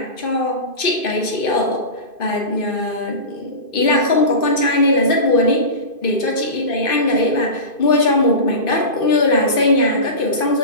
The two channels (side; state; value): right; late; 2.5 ms